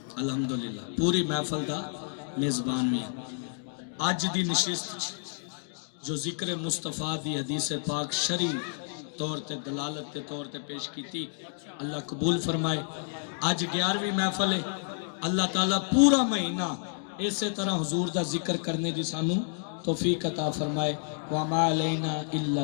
الحمدللہ پوری محفل دا میزبان بھی ہاں. اج دی نشست جو ذکر مصطفیٰ دی حدیث پاک شرعی طور تے دلالت کے طور تے پیش کیتی، اللہ قبول فرمائے. اج 11ویں محفل ہے. اللہ تعالیٰ پورا مہینہ اسی طرح حضور دا ذکر کرنے دی سانو توفیق عطا فرمائے. وَمَا عَلَيْنَا إِلَّا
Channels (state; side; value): silent; right; digital silence